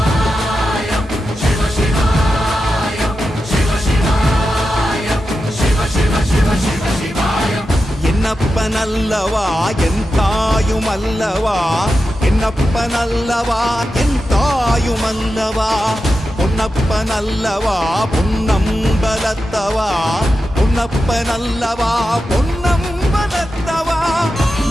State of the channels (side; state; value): both; normal; correlation 0.90